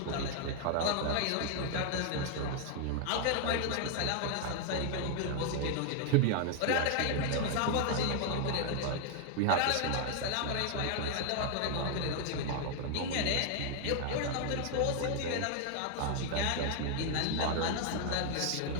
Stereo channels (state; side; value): different; both; correlation 0.00